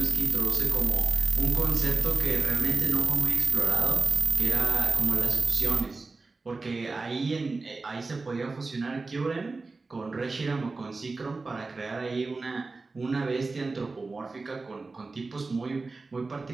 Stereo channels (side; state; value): left; quieter; 3.8 dB